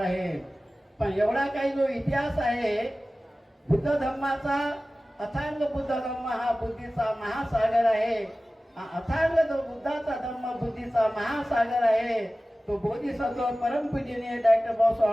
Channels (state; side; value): normal; both; correlation 0.97